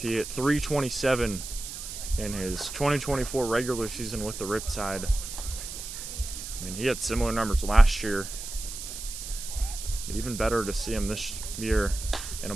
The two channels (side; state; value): right; noise; hiss, 9 dB below the sound